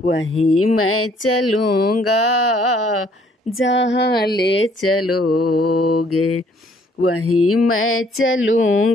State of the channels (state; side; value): normal; both; correlation 0.62